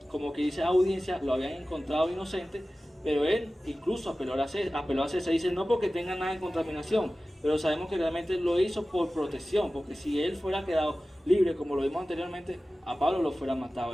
como que dice, audiencia, lo habían encontrado inocente, pero él incluso apeló a César, dice: no porque tenga nada en contaminación, pero sabemos que realmente lo hizo por protección, porque si él fuera quedado libre, como lo vimos anteriormente, a Pablo lo fuera matado.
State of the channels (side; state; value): both; normal; correlation 0.96